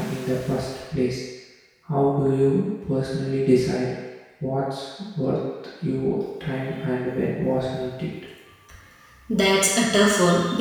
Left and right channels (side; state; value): both; identical; correlation 1.00